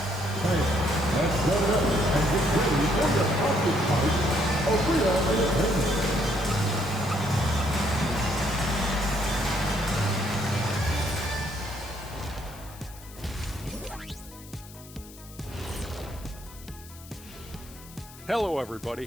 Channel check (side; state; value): left; noise; hiss, 19 dB below the sound